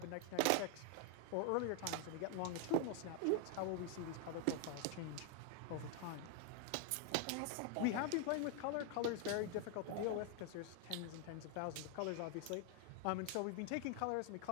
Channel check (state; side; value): different; both; correlation 0.01